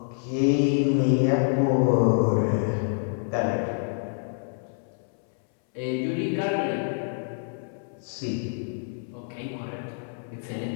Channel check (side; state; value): right; silent; 60 dB below the other